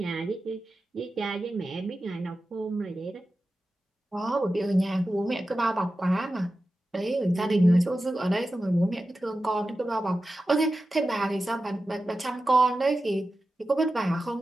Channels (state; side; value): normal; both; correlation 0.93